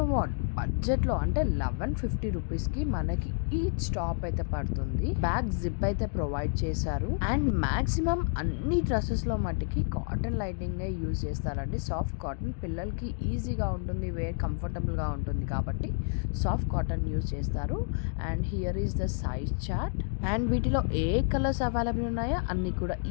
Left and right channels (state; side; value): silent; right; 58 dB below the other